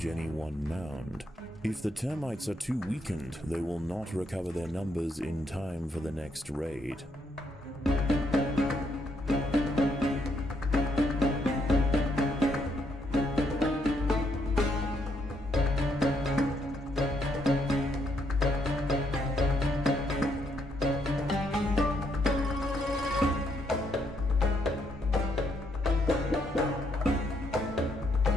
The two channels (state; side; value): normal; both; correlation 0.74